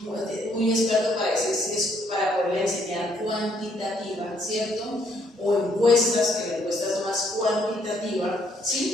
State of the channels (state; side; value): normal; both; correlation 0.69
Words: muy experto para decir si es para poder enseñar cuantitativa, ¿cierto? O encuestas, que la encuesta es más cuantitativa,